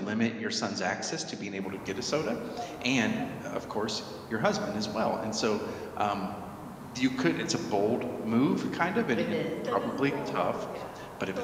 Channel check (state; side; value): identical; both; correlation 1.00